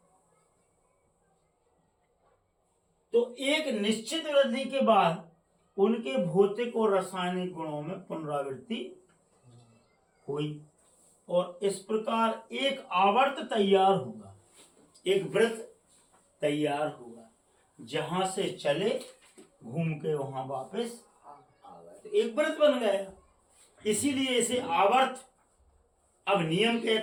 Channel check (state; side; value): identical; both; correlation 1.00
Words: तो एक निश्चित वृद्धि के बाद उनके भौतिक और रासायनिक गुणों में पुनरावृत्ति हुई और इस प्रकार एक आवर्त तैयार हुआ, एक वृत्त तैयार हुआ, जहां से चले घूम के वहां वापस आ गए, तो एक वृत्त बन गया। इसीलिए इसे आवर्त अब नियम